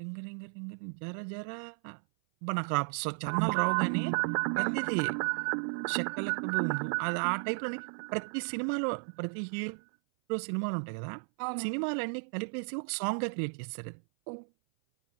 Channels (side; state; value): left; silent; 55 dB below the other